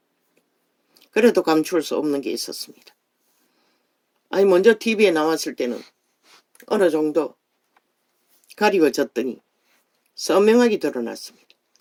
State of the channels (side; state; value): both; identical; correlation 1.00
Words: 그래도 감출 수 없는 게 있었습니다. 아니, 먼저 TV에 나왔을 때는 어느 정도 가리워졌더니 선명하게 드러났습니다.